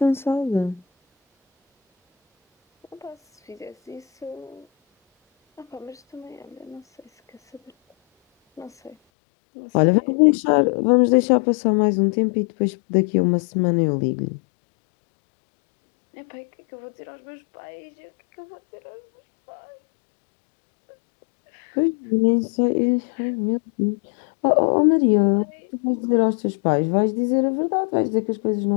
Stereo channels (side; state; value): right; drops out; at 9.0 s